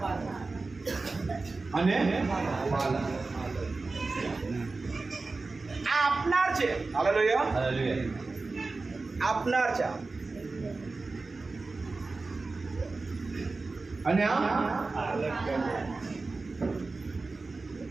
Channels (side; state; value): left; quieter; 3.7 dB